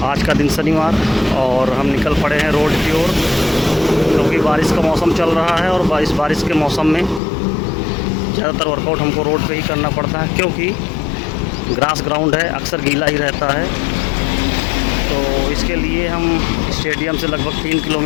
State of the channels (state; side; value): drops out; right; at 7.2 s